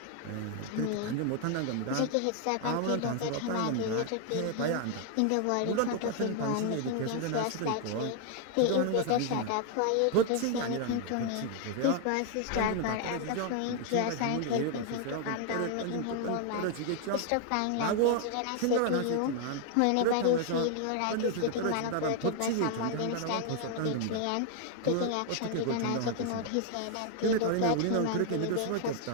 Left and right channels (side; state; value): both; different; correlation 0.00